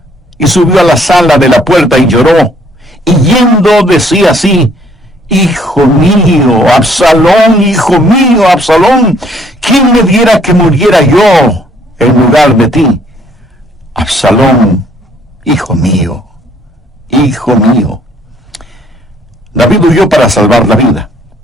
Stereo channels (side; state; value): both; normal; correlation 0.63